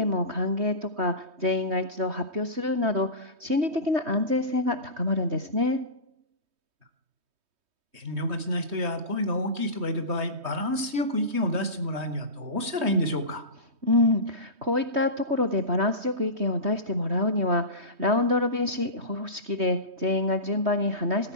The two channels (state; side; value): late; left; 3.2 ms